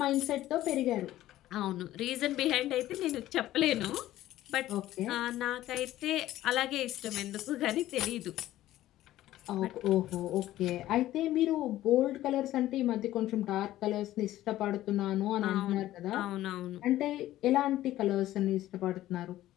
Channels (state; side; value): quieter; right; 14.4 dB